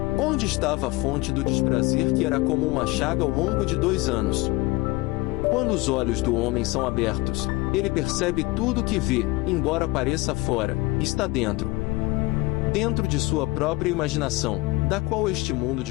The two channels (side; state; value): right; quieter; 21.4 dB